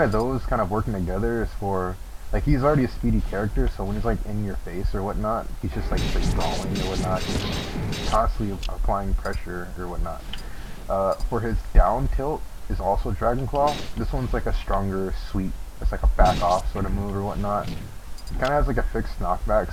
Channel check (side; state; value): both; identical; correlation 1.00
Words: of those kind of working together is for, like, he's already a speedy character, so when he's like in your face or whatnot, he's just like straight brawling or whatnot. He's just constantly applying pressure or whatnot. For his down tilt is also Dragon Claw. This one's like a stronger sweep. It's like a back off sort of move or whatnot. It kind of has like a fixed